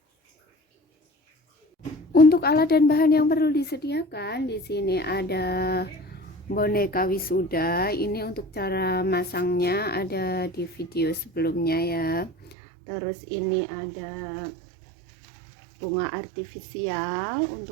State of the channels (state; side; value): drops out; left; at 12.6 s